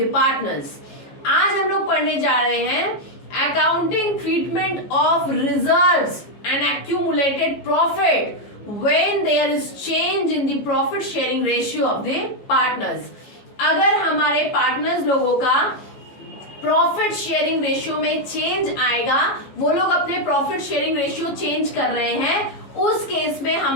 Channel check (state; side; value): late; right; 15 ms